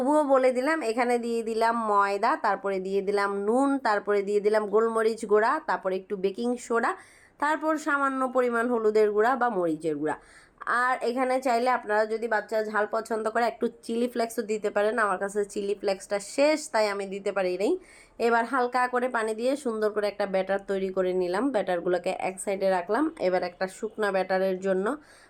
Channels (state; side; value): identical; both; correlation 1.00